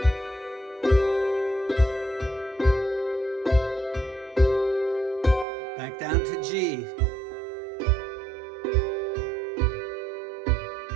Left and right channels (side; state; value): left; drops out; at 5.5 s